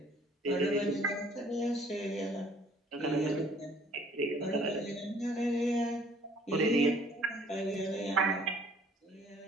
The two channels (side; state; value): both; normal; correlation 0.57